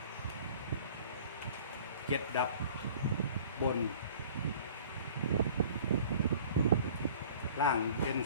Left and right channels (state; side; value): inverted; both; correlation -0.49